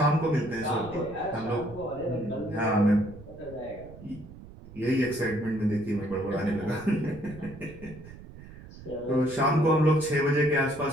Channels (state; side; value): noise; right; rumble, 17 dB below the sound